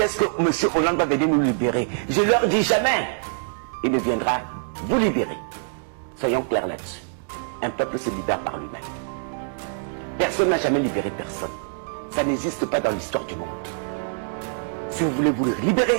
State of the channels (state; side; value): silent; left; digital silence